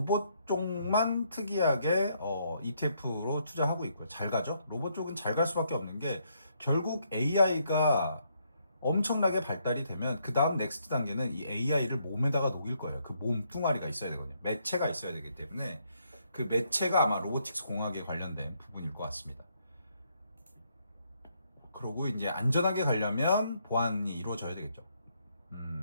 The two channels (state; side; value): inverted; both; correlation -0.73